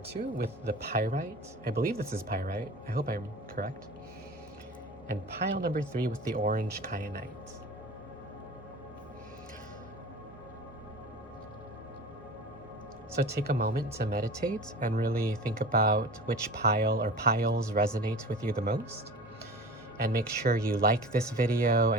with the pyrite. I believe this is pyrite. I hope I'm correct. And pile number 3 with the orange kyanite. So take a moment to meditate and really think about which pile or piles resonate with you the most. And make sure you like this video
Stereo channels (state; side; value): normal; both; correlation 0.37